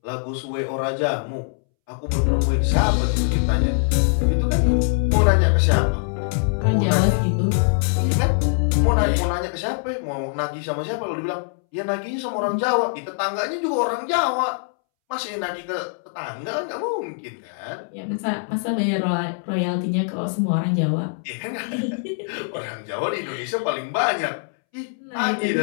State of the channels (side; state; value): right; silent; 64 dB below the other